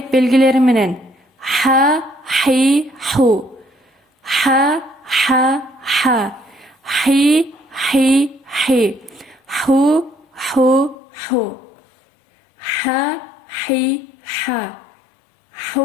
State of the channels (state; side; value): drops out; right; at 11.0 s